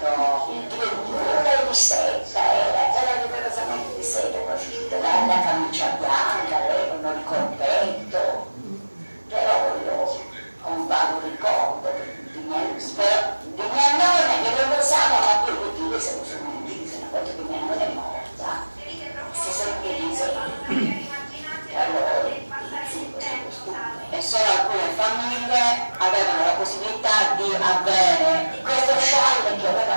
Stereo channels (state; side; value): inverted; both; correlation -1.00